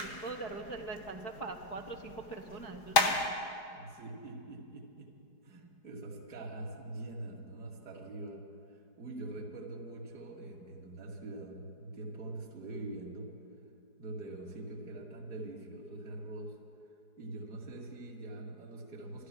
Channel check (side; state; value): right; late; 5.0 ms